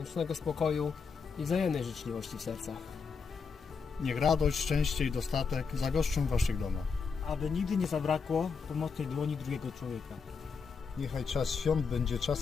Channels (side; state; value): right; quieter; 5.4 dB